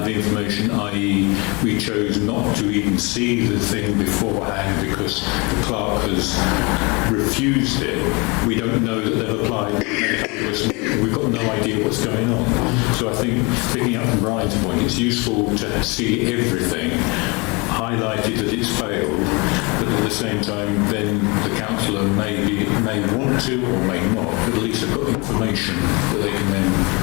the information, i.e. we chose not to even see the thing beforehand because the clerk has refused it, we don't know that they've applied. We've got no idea what's going on. So I think, picking up from Brian's point, it's useful to see everything, highlighted that it's failed, but at the same time then the councillor may want to or may not, but at least they've got information that they can then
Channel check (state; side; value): quieter; right; 28.3 dB